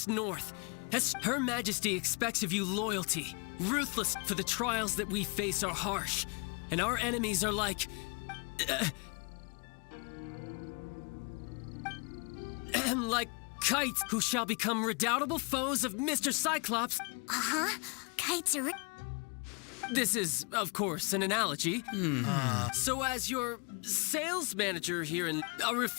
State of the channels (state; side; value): quieter; right; 34.0 dB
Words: north. As Her Majesty expects of you loyalty, ruthless, for the trials that we face are harsh, and our enemies are like... like kites who shall become redoubtable foes of Mr. Cyclops. Uh-huh. Kites are... This is, of course, an analogy. So as your sales manager here, a